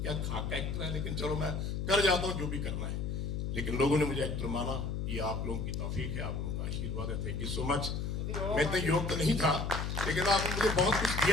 क्या खाका एक्टर है, लेकिन चलो मैं कर जाता हूँ जो भी करना है। लेकिन लोगों ने मुझे एक्टर माना, ये आप लोगों की तौफीक है, आप लोगों का आशीर्वाद है। Thank you so much. मैं इतना योग तो नहीं था, लेकिन आपने मुझे बहुत कुछ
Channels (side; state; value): left; noise; hum, 2 dB below the sound